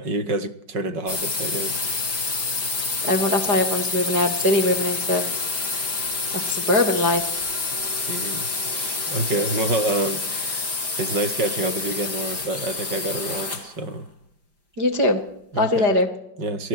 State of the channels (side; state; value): left; late; 5.1 ms